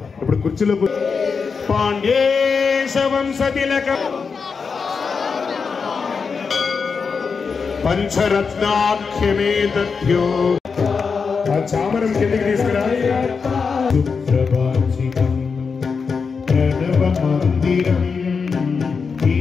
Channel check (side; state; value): right; quieter; 5.4 dB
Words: ఇప్పుడు కుర్చీలో పాండ్యేశవంశతిలక పంచరత్నాఖ్యమే తథ్యో ఆ చామరం కిందకి తీసుకురా ప్రణవ మందిరం